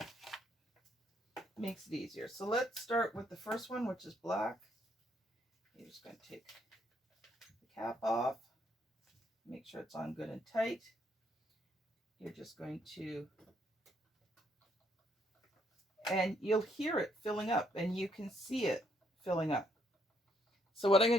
Makes it easier. So let's start with the first one, which is black. You're just going to take the cap off. Make sure it's on good and tight. You're just going to, and you'll hear it filling up, and you can see it filling up. So what I'm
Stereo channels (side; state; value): both; normal; correlation 0.71